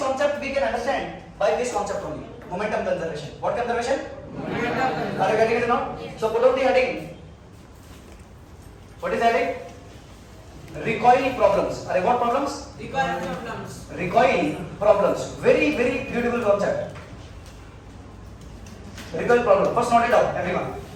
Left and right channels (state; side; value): identical; both; correlation 1.00